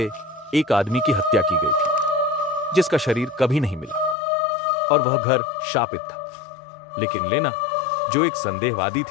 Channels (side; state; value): right; drops out; at 4.2 s